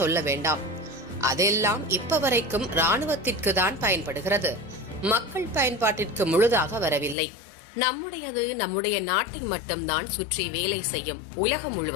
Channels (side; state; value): right; drops out; at 7.2 s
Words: சொல்ல வேண்டாம். அதெல்லாம் இப்ப வரைக்கும் ராணுவத்திற்கு தான் பயன்படுகிறது. மக்கள் பயன்பாட்டிற்கு முழுதாக வரவில்லை. நம்முடையது நம்முடைய நாட்டை மட்டும்தான் சுற்றி வேலை செய்யும், உலகம்